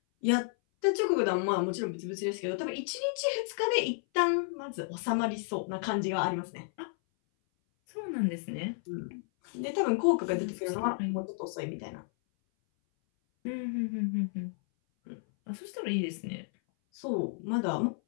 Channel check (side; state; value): right; silent; 56 dB below the other